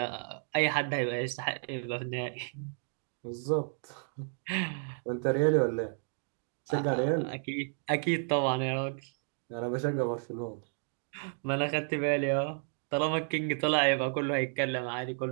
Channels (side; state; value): left; silent; 56 dB below the other